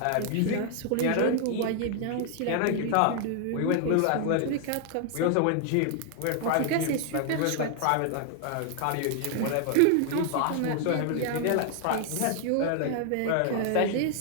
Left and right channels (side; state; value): both; different; correlation 0.00